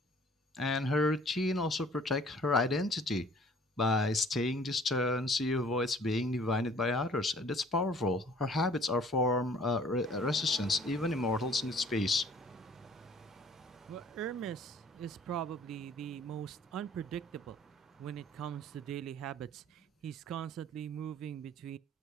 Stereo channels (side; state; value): both; normal; correlation 0.54